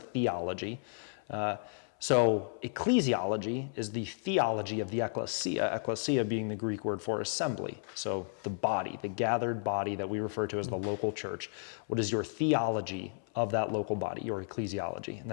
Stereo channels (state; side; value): silent; right; 56 dB below the other